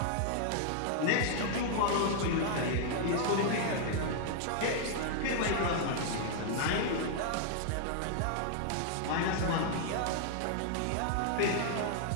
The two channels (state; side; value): different; both; correlation 0.00